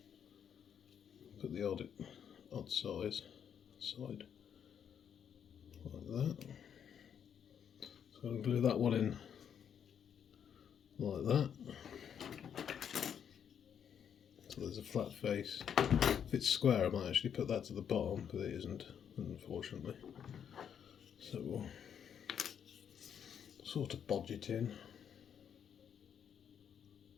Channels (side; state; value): right; quieter; 8.3 dB